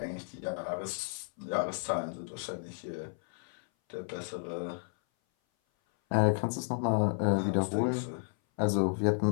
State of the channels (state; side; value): silent; right; 56 dB below the other